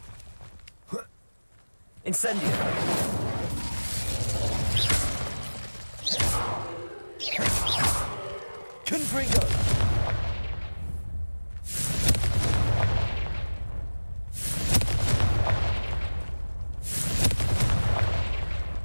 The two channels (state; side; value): inverted; both; correlation -1.00